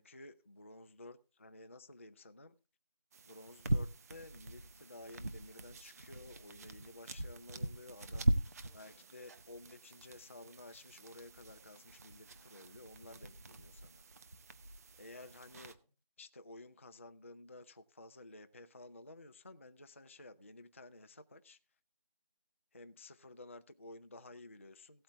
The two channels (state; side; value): inverted; both; correlation -0.92